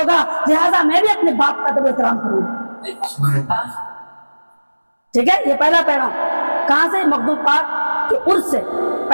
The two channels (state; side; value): inverted; both; correlation -1.00